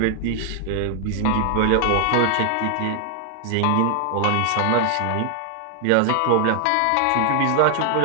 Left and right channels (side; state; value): both; different; correlation 0.00